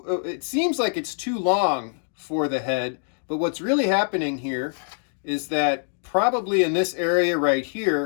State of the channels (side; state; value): right; silent; digital silence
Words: seems like it's too long for the head, but what's really happening here is that probably in this area right